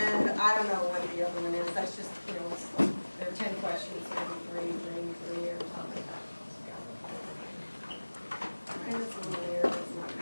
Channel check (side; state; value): both; inverted; correlation -1.00